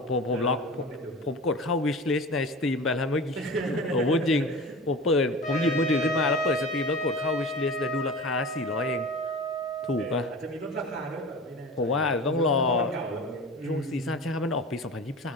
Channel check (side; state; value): both; normal; correlation 0.34